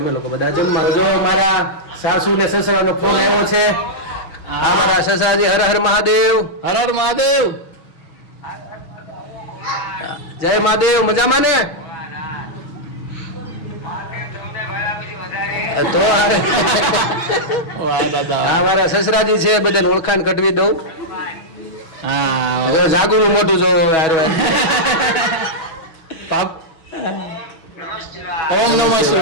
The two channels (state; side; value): late; right; 6.2 ms